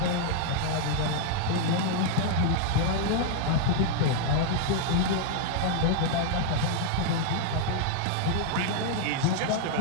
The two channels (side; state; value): both; different; correlation 0.00